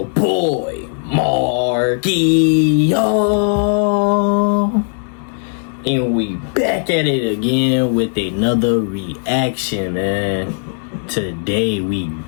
boy, Marky, and we back at it again with another reaction, man. Today we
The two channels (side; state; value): right; silent; digital silence